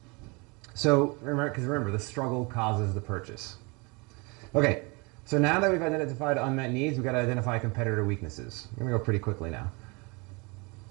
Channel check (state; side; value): quieter; left; 28.6 dB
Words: So remember, the struggle causes the purchase. Okay, so now that we've identified unmet needs, we've got to identify competitor weaknesses. I'm going to go pretty quickly now.